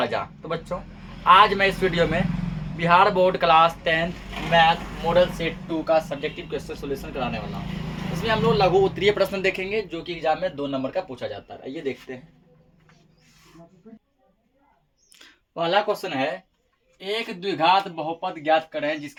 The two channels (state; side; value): identical; both; correlation 1.00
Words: तो बच्चों, आज मैं इस वीडियो में Bihar board class 10th math model set 2 का सब्जेक्टिव क्वेश्चन सॉल्यूशन कराने वाला हूँ। इसमें हम लोग लघु उत्तरीय प्रश्न देखेंगे जो कि एग्जाम में 2 नंबर का पूछा जाता है। आइए देखते हैं। पहला क्वेश्चन है, एक द्विघात बहुपद ज्ञात करें